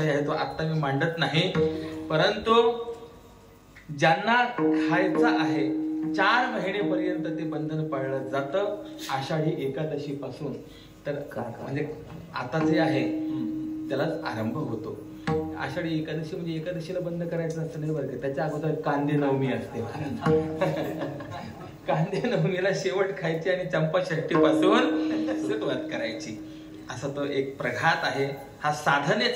आहे, तो आता मी मांडत नाही. परंतु ज्यांना खायचं आहे 4 महिनेपर्यंत ते बंधन पाळलं जातं. आषाढी एकादशी पासून तर म्हणजे आता जे आहे त्यालाच आरंभ होतो. आषाढी एकादशी म्हणजे एकादशीला बंद करायचं नसतं नाही बरं का. त्याच्या अगोदर कांदे नवमी असते. कांदे नवमीला शेवट खायची आणि चंपाषष्ठी पासून सुरुवात करायची. असा तो एक प्रघात आहे. हा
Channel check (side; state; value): both; identical; correlation 1.00